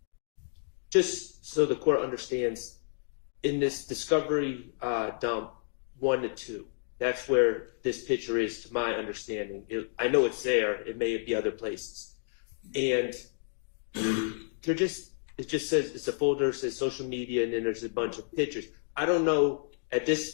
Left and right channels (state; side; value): silent; right; digital silence